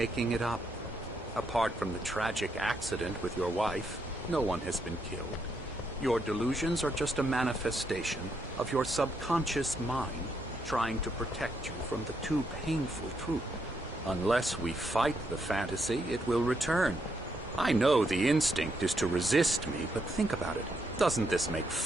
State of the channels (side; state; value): both; normal; correlation 0.78